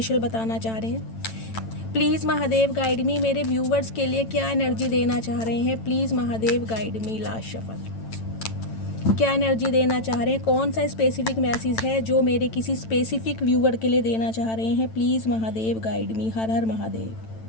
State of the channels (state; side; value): late; right; 9.0 ms